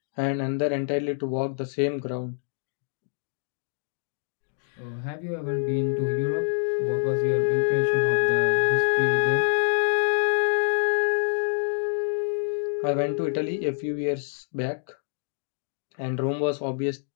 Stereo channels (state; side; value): silent; right; digital silence